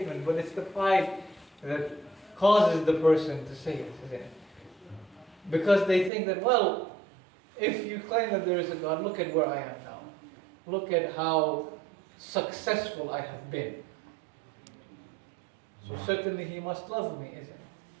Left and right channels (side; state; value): left; drops out; at 6.1 s